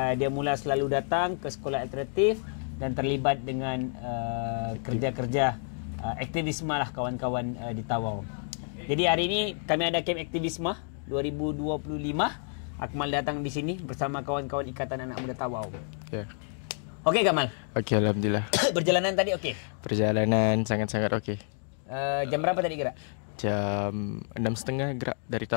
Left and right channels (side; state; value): right; silent; 56 dB below the other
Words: dia mula selalu datang ke sekolah alternatif dan terlibat dengan kerja-kerja aktivisme lah kawan-kawan di Tawau. Jadi hari ini kami ada camp aktivisme 2025. Akmal datang di sini bersama kawan-kawan Ikatan Anak Muda Tawau. Ya. Okey, Kamal? Okey, alhamdulillah. Perjalanan tadi okey? Perjalanan sangat-sangat okey. Jam berapa tadi gerak? Jam 6.30 gerak dari